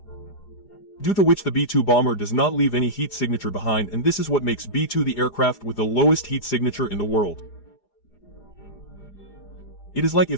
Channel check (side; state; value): right; late; 4.9 ms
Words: Due to which the B-2 bomber does not leave any heat signature behind, and this is what makes B-2 the aircraft with the lowest heat signature in the world. It is like